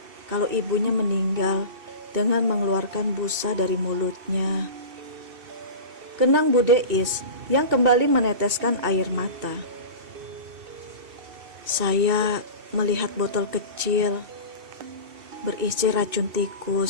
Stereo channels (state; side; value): late; left; 2.7 ms